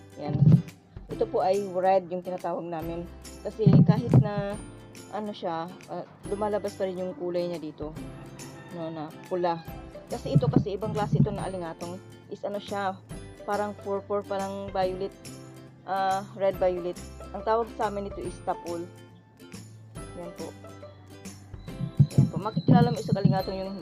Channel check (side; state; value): both; identical; correlation 1.00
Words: Yan. Ito po ay red yung tinatawag namin. Kasi kahit na lumalabas pa rin yung kulay niya dito. Na pula. Kasi ito kasi ibang klase ito na alingatong is siya, parang purple, parang violet. Red violet. Ang tawag sa amin ito is tapol. Yan po. Yan po. Makikilala mo isa kalingatong yung